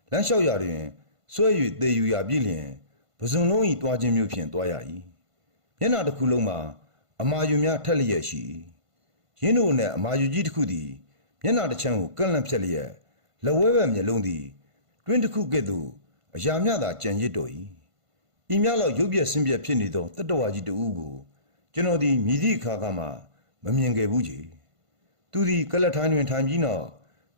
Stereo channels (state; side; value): late; left; 1.5 ms